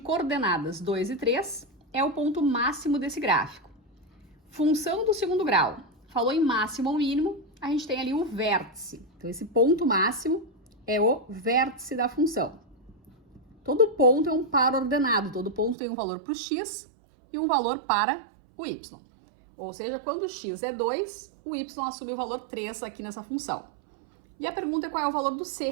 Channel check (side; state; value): left; drops out; at 15.8 s